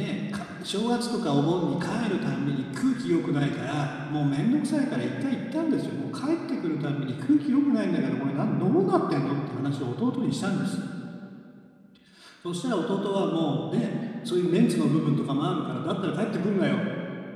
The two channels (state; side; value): identical; both; correlation 1.00